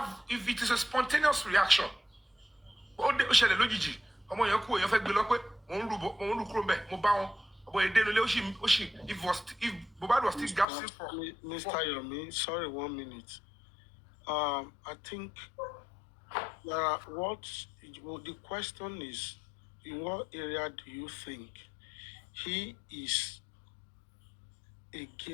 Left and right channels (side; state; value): right; drops out; at 10.7 s